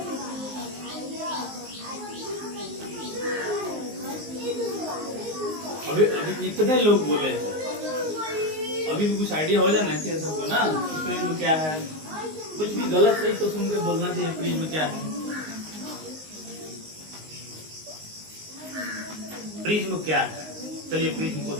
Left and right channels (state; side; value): late; left; 19 ms